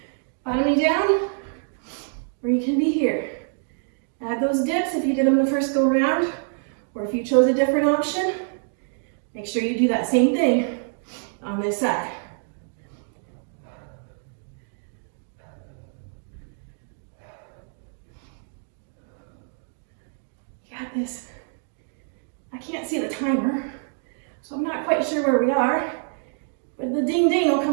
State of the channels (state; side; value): silent; left; 61 dB below the other